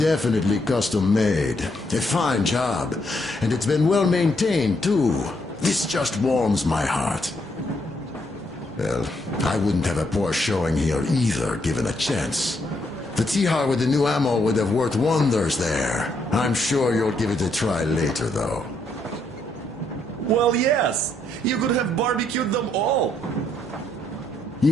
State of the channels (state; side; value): normal; both; correlation 0.74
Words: custom-made. A fine job. And it's been well maintained, too. This just warms my heart. Well, I wouldn't have a poor showing here either, given a chance. The Tihar with the new ammo would have worked wonders there. I'm sure you'll give it a try later, though. Well, yes. You could have barbecued them all.